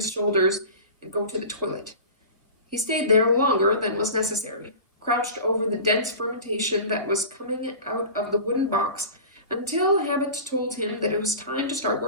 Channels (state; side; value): inverted; both; correlation -0.35